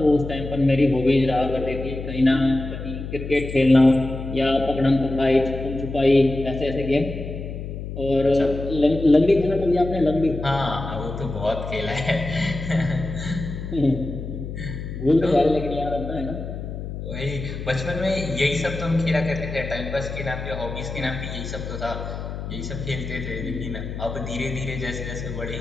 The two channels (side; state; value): left; noise; hum, 7 dB below the sound